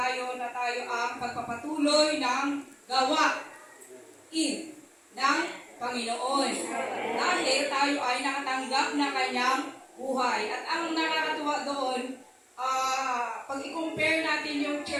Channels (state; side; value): identical; both; correlation 1.00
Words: na tayo ang pagpapatuloy ng gawain ng Panginoon. Dahil tayo ay nakatanggap na kanyang buhay. At ang nakakatuwa doon, pag i-compare natin yung